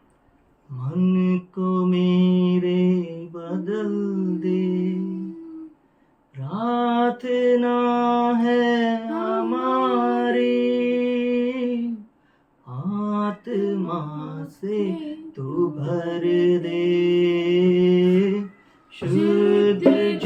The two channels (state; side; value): identical; both; correlation 1.00